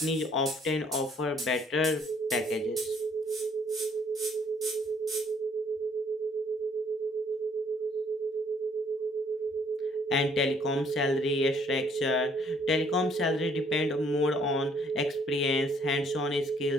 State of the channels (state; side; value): normal; both; correlation 0.63